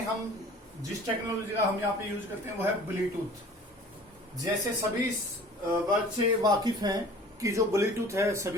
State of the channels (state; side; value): normal; both; correlation 0.46